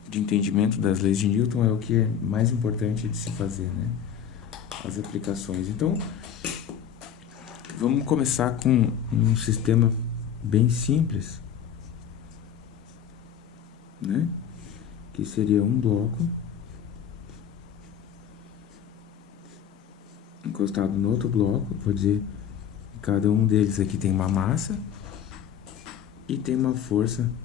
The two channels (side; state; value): right; quieter; 8.7 dB